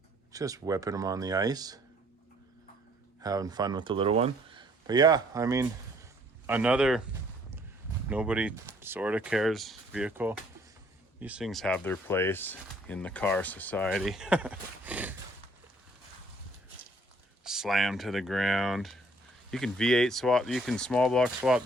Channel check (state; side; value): normal; both; correlation 0.62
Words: Just whipping them on the ice. Having fun with the little one. But yeah, I mean, another nobody sort of cares vehicle. These things have their place in the car society. Slam to the ground. You can V8 swap, you can small block swap